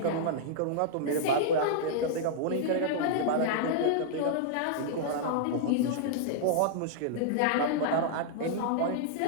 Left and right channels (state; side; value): different; both; correlation -0.02